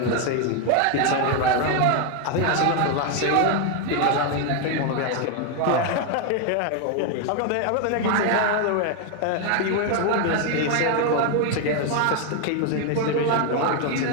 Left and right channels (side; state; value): both; different; correlation 0.01